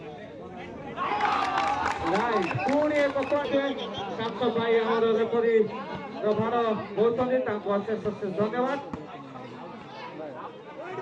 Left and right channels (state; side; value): identical; both; correlation 1.00